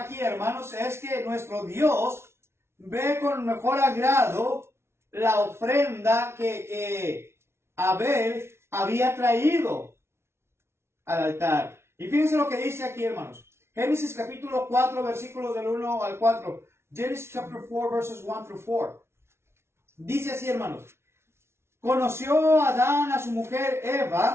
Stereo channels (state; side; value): late; left; 0.12 ms